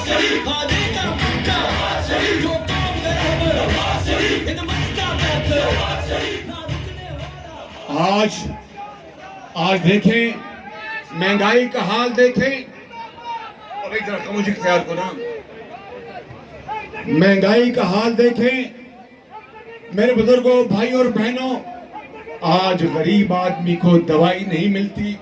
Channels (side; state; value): both; identical; correlation 1.00